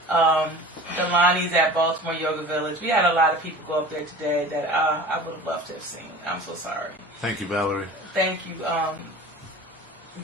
Delani's at Baltimore Yoga Village. We had a lot of people go up there today that I would have loved to have seen. I'm so sorry. Thank you, Valerie. Thank you,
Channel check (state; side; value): normal; both; correlation 0.39